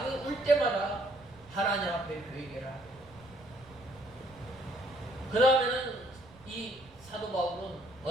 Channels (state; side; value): noise; right; rumble, 24 dB below the sound